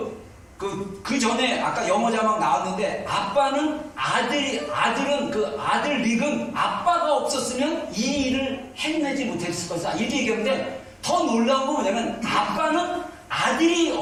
전에 아까 영어 자막 나왔는데 아빠는 아들은 그 아들 릭은 아빠가 없었으면 이 일을 해내지 못했을 것이다. 이렇게 얘기하는데 더 놀라운 건 뭐냐면 아빠는 아들이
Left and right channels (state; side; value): identical; both; correlation 1.00